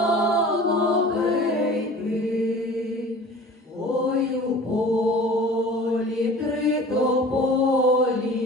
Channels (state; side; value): normal; both; correlation 0.43